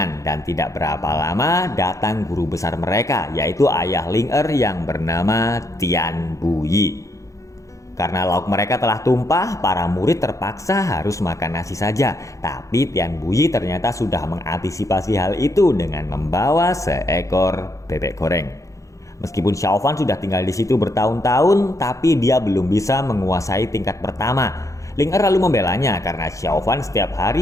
dan tidak berapa lama datang guru besar mereka yaitu ayah Ling-er yang bernama Tian Buyi. Karena lauk mereka telah tumpah, para murid terpaksa harus makan nasi saja. Tapi Tian Buyi ternyata sudah mengantisipasi hal itu dengan membawa seekor bebek goreng. Meskipun Xiaofan sudah tinggal di situ bertahun-tahun, tapi dia belum bisa menguasai tingkat pertama. Ling-er lalu membelanya karena Xiaofan setiap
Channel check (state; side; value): late; right; 0.15 ms